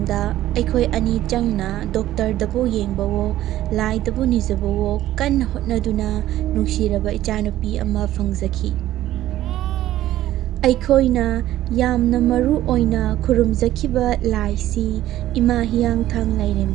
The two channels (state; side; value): quieter; left; 13.9 dB